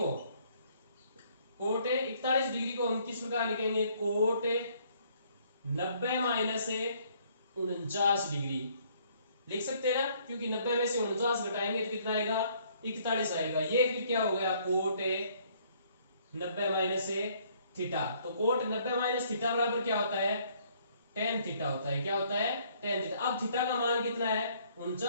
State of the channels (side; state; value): both; inverted; correlation -0.64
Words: कोट 41 डिग्री को हम किस प्रकार लिखेंगे, कोट 90 माइनस 49 डिग्री लिख सकते हैं ना, क्योंकि 90 में से 49 घटाएंगे तो कितना आएगा, 41 आएगा। ये फिर क्या हो गया, कोट 90 माइनस थीटा। तो कोट 90 माइनस थीटा बराबर क्या होता है, टेन थीटा होता है। क्या होता है, टेन थीटा। अब थीटा का मान कितना है